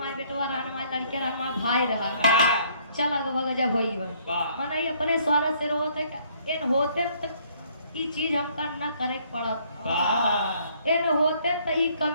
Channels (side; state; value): both; inverted; correlation -0.64